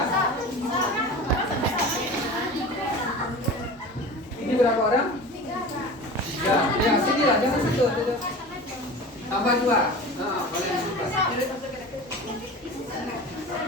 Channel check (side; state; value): both; normal; correlation 0.35